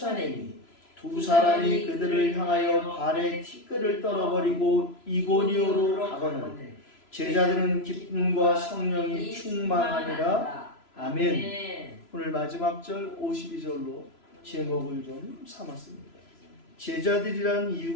두 사람이 그들을 향하여 발에 티끌을 떨어버리고 이고니오로 가거늘 제자들은 기쁨과 성령이 충만하니라. 아멘. 오늘 마지막 절 52절로 제목을 좀 삼았습니다. 제자들이라는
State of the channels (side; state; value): right; late; 3.0 ms